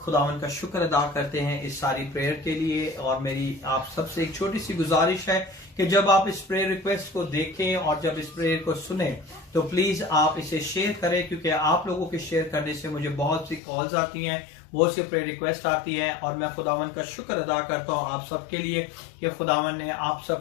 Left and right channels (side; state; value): right; drops out; at 13.6 s